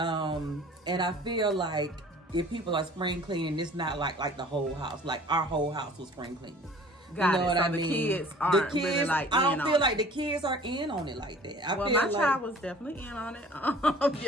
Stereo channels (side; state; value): both; normal; correlation 0.48